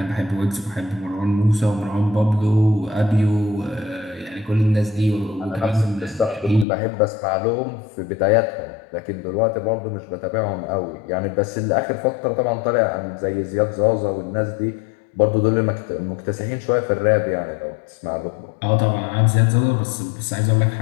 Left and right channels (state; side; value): drops out; right; at 6.7 s